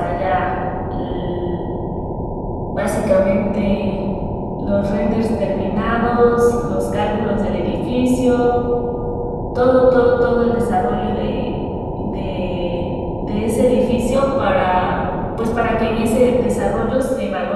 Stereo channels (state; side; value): identical; both; correlation 1.00